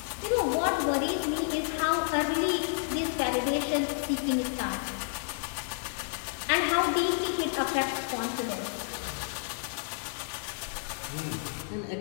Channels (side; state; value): right; silent; digital silence